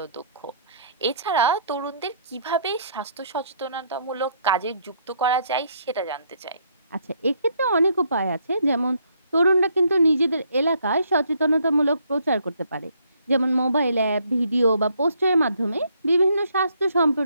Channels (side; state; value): both; inverted; correlation -0.68